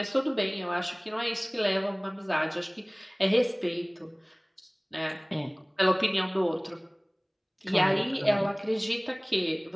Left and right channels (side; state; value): both; identical; correlation 1.00